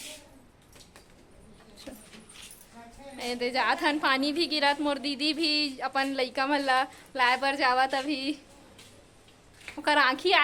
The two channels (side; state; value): both; identical; correlation 1.00